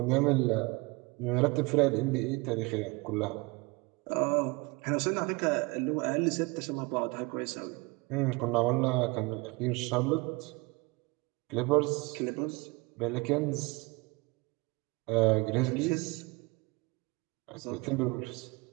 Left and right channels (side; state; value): left; quieter; 26.0 dB